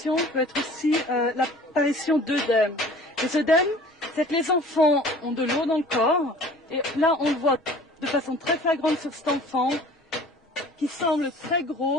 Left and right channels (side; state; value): both; normal; correlation 0.47